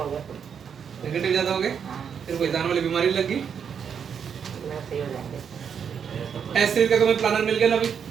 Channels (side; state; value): left; quieter; 7.3 dB